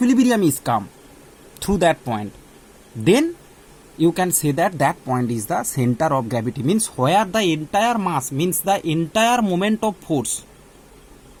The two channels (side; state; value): both; identical; correlation 1.00